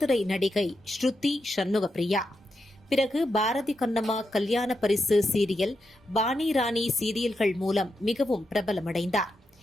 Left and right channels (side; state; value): both; normal; correlation 0.85